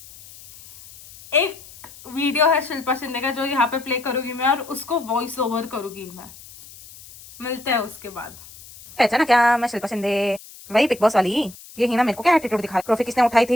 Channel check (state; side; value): noise; left; hiss, 19 dB below the sound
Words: एक वीडियो है शिल्पा शिंदे का जो यहाँ पे प्ले करूंगी मैं, और उसको वॉइस ओवर करूंगी मैं. मिलते हैं उसके बाद. पहचाना क्या? मैं शिल्पा शिंदे, वही बिग बॉस वाली. ये ही ना मेरे को क्या एटीट्यूड दिखा. ट्रॉफी किसने उठाई